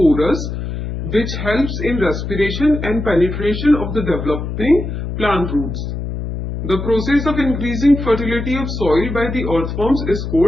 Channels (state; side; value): noise; left; hum, 5 dB below the sound